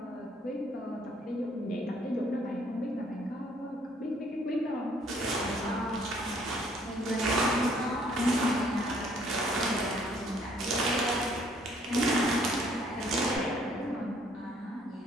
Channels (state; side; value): normal; both; correlation 0.63